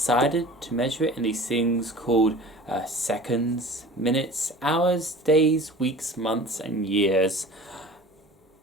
to measure it in these things called seconds, minutes, hours, days, weeks, months, and years.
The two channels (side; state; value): both; normal; correlation 0.41